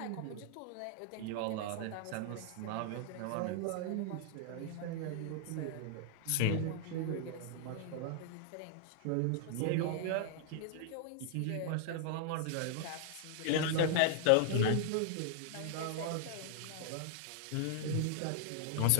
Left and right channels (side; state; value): both; different; correlation 0.00